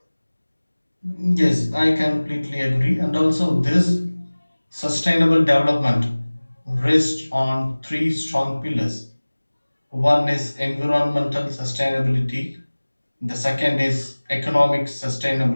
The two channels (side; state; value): both; inverted; correlation -1.00